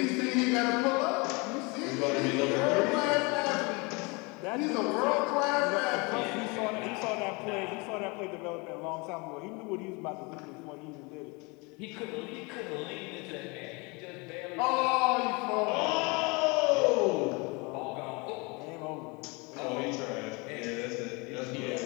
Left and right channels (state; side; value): quieter; right; 28.2 dB